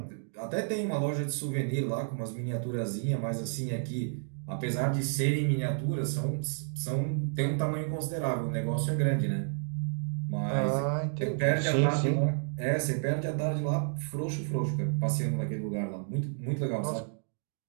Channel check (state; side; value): silent; left; digital silence